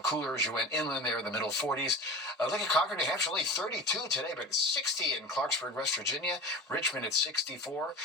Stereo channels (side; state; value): both; normal; correlation 0.33